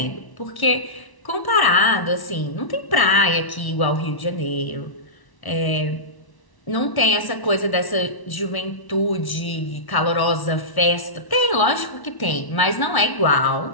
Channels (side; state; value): right; late; 1.1 ms